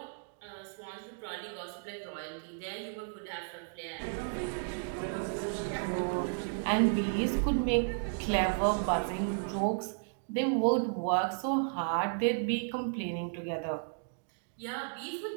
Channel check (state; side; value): silent; left; digital silence